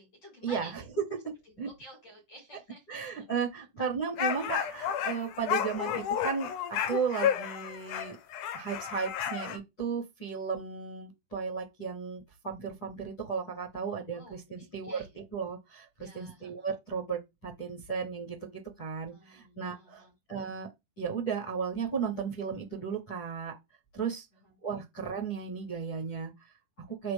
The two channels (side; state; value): right; late; 10 ms